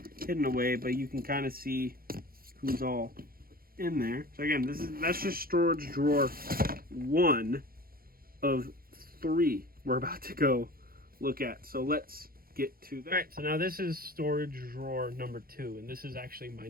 hidden away, but you can kind of see who's all in there. So again, that's just storage drawer 1 of 3 we're about to go look at. So let's get to that. All right, so now this is storage drawer number 2, and this is actually my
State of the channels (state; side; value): late; left; 0.43 ms